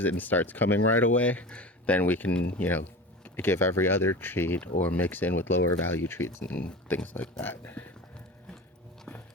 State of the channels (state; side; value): normal; both; correlation 0.32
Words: it and starts coming right away, then we can give every other treat or mix in with lower value treats and things like that.